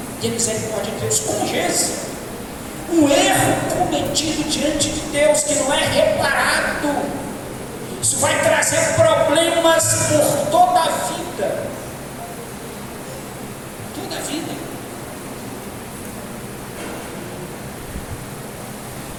E a misericórdia de Deus. Como Jesus, um erro cometido diante de Deus que não é reparado, isso vai trazer problemas por toda a vida. Toda a vida.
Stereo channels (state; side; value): identical; both; correlation 1.00